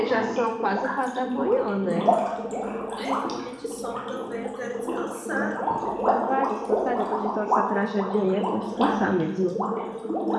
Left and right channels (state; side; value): identical; both; correlation 1.00